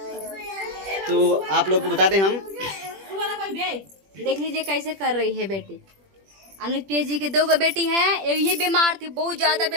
तो आप लोग को बता दें हम, देख लीजिए कैसे कर रही है बेटी। अनुज पीएस जी की 2 बेटी हैं। ये बीमार थी, बहुत ज्यादा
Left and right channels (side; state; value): left; late; 21 ms